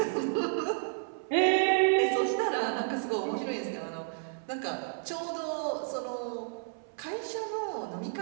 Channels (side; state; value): left; silent; 57 dB below the other